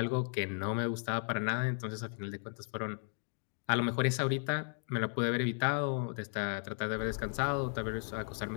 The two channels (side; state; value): right; silent; 54 dB below the other